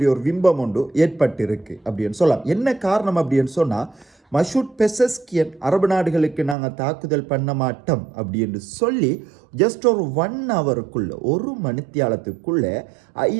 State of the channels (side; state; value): left; drops out; at 6.6 s